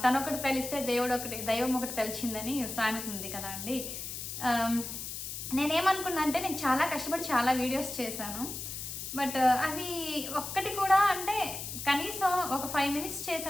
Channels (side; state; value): left; noise; hiss, 7 dB below the sound